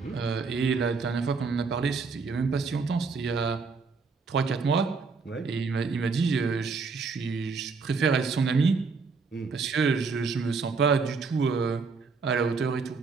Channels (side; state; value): left; quieter; 4.7 dB